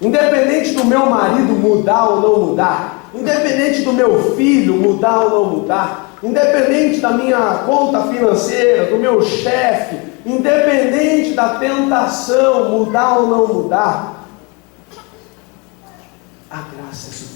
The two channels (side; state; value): right; quieter; 30.0 dB